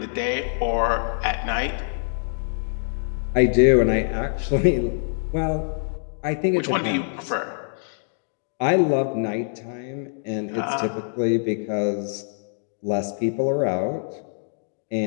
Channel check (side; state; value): right; silent; 62 dB below the other